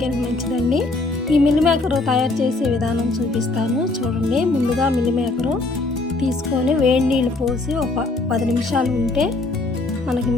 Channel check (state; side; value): quieter; right; 3.2 dB